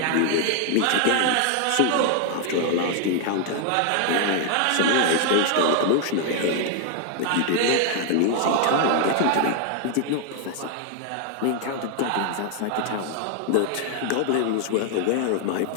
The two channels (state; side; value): different; both; correlation 0.00